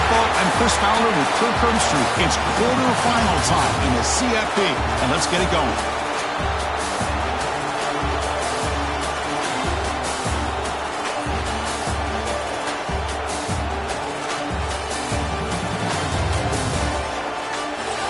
I'm Chris Fowler with Kirk Herbstreit. It's quarterfinal time in the CFP, and let's get it going.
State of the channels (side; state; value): both; identical; correlation 1.00